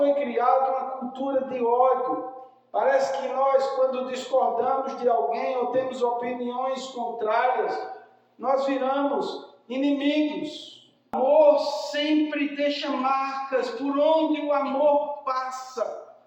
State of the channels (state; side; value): identical; both; correlation 1.00